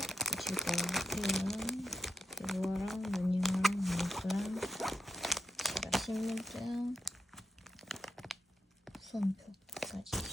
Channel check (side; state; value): both; normal; correlation 0.83